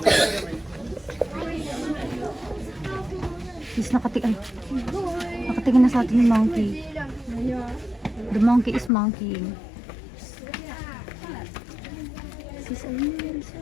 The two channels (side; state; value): right; drops out; at 8.9 s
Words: Sis, nakatingin na sa atin yung monkey. The monkey is monkeying. Sis, ayun na rin